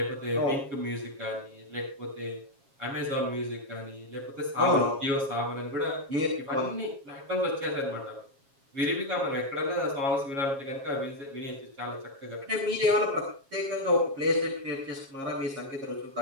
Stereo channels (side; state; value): left; late; 7.3 ms